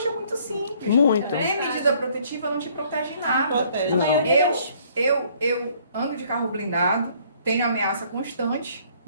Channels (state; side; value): inverted; both; correlation -0.61